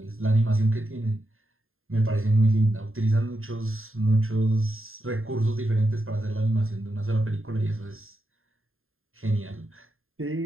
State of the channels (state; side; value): late; left; 0.61 ms